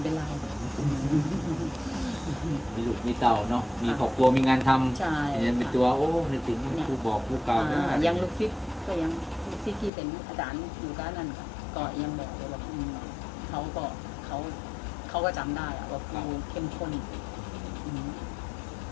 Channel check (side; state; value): right; drops out; at 9.9 s